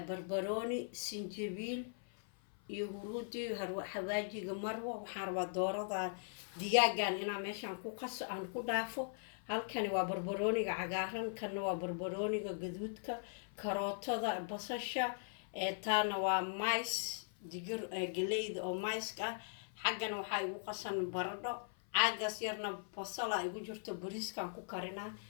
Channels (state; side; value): silent; right; 51 dB below the other